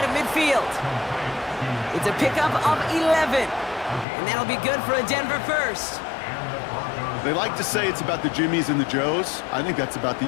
of midfield. It's a pickup of 11. And that'll be good for a Denver first. They like to say it's about the Jimmies and the Joes. I think that's about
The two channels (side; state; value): right; drops out; at 4.0 s